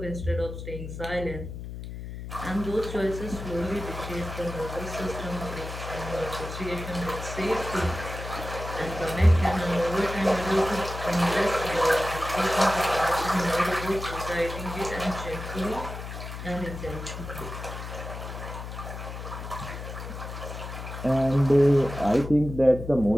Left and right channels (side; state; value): left; noise; hum, 9 dB below the sound